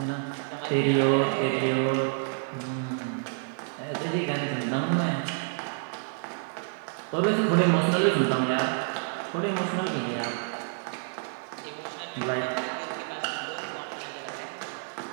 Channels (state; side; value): silent; left; 59 dB below the other